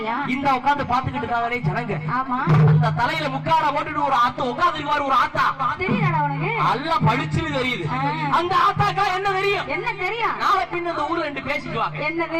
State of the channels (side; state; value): both; identical; correlation 1.00